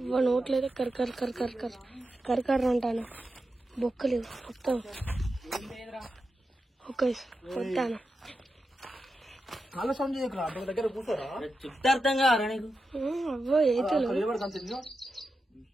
నోట్లేదు కరకర అంటాను. బొక్కలు మొత్తం ఓకే వస్తాను. చాలా సౌండ్ చేయకురా, దగ్గర కూర్చోరా. అర్థం కారా నీకు? అబ్బో ఏతులు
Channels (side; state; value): both; normal; correlation 0.90